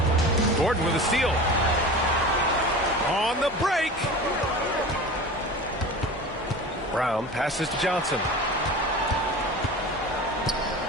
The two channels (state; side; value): normal; both; correlation 0.34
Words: Gordon with a steal. On the break. Brown passes to Johnson.